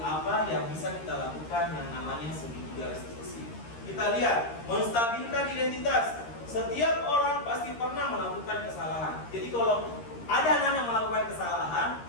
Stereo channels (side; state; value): right; late; 13 ms